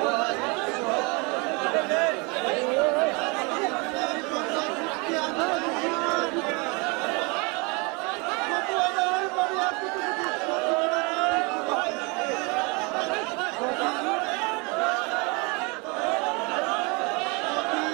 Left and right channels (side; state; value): left; quieter; 29.6 dB